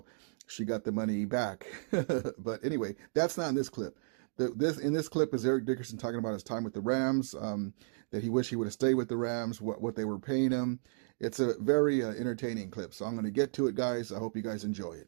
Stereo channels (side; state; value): left; silent; digital silence